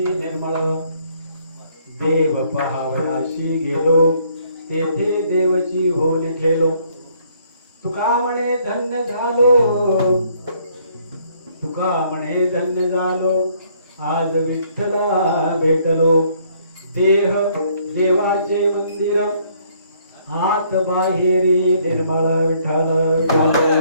निर्मळ देव पहावयाशी गेलो तेथे देवची होल ठेलो तुका म्हणे धन्य झालो तुका म्हणे धन्य झालो आज विठ्ठला भेटलो देह देवाचे मंदिर आत बाहेरी निर्मळ विठ्ठल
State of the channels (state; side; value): inverted; both; correlation -0.65